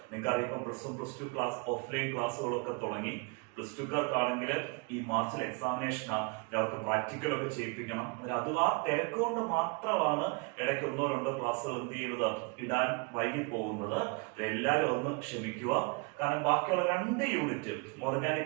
നിങ്ങൾക്കറിയാം. ഇപ്പം +1 +2 ക്ലാസ് ഓഫ്ലൈൻ ക്ലാസ്സുകളൊക്കെ തുടങ്ങി. +2 കാർക്കാണെങ്കിൽ ഈ മാർച്ചിൽ എക്സാമിനേഷനാണ്, അവർക്ക് പ്രാക്ടിക്കലൊക്കെ ചെയ്യിപ്പിക്കണം. അത് ആ തിരക്ക് കൊണ്ട് മാത്രമാണ് ഇടയ്ക്ക് 1-2 ക്ലാസ്സുകൾ എന്ത് ചെയ്യുന്നത്, ഇടാൻ വൈകി പോകുന്നത്. എല്ലാവരും ഒന്ന് ക്ഷമിക്കുക. കാരണം ബാക്കിയുള്ള 2 യൂണിറ്റ്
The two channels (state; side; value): quieter; left; 31.3 dB